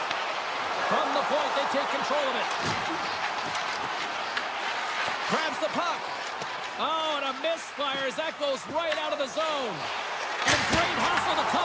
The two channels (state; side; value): identical; both; correlation 1.00